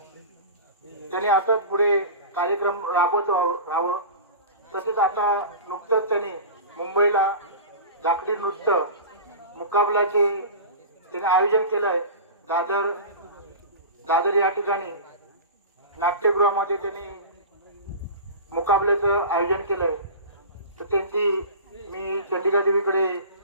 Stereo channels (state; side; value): inverted; both; correlation -0.33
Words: त्यांनी असंच पुढे कार्यक्रम राबवत राहावं. तसेच आता नुकतंच त्यांनी मुंबईला लाकडी नृत्य मुकाबल्याचे त्याने आयोजन केलं आहे. दादर या ठिकाणी नाट्यगृहामध्ये त्यांनी मुकाबल्याचं आयोजन केलंय. तर त्यांची मी चंडिका देवीकडे